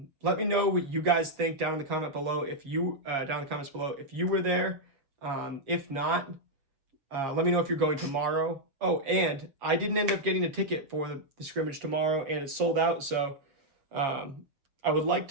me know what you guys think down in the comment below. If you down in the comments below if you were there. If not, let me know if you're going tomorrow. Oh, and I didn't end up getting a ticket for the scrimmage tomorrow, and it's sold out. So I would like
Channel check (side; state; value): left; late; 7.3 ms